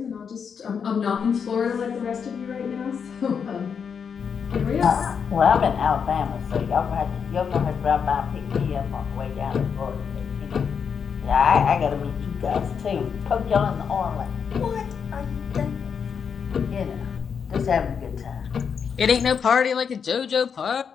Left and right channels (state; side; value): quieter; right; 6.7 dB